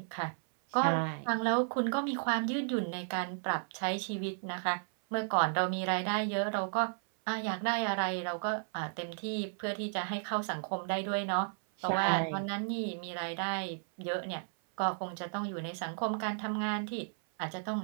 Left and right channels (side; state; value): left; silent; 55 dB below the other